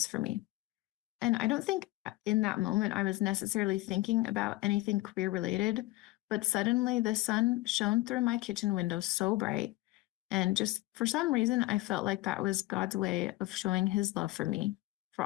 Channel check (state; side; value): quieter; right; 19.0 dB